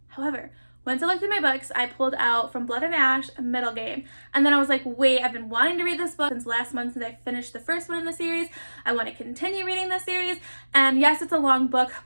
However, once I looked at my books, I pulled out From Blood and Ash, Middle Game. And then I was like, wait, I've been wanting to read this book since last month since I finished the first one in the series. I want to continue reading this series. And yes, it's a long book,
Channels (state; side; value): inverted; both; correlation -1.00